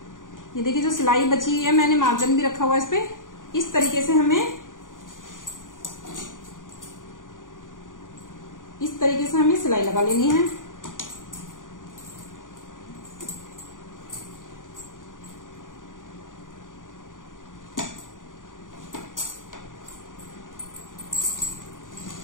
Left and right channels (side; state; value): right; late; 0.88 ms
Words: ये देखिए जो सिलाई बची हुई है, मैंने मार्जिन भी रखा हुआ है इस पे, इस तरीके से हमें, इस तरीके से हमें सिलाई लगा लेनी है।